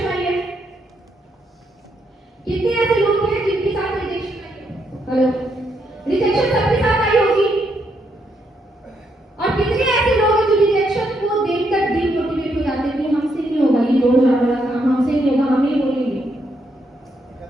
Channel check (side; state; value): both; normal; correlation 0.77